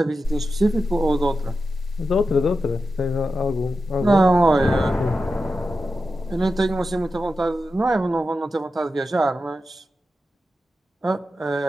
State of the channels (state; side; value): normal; both; correlation 0.91